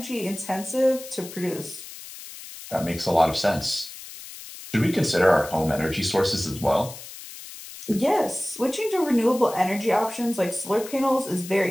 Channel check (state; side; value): noise; left; hiss, 14 dB below the sound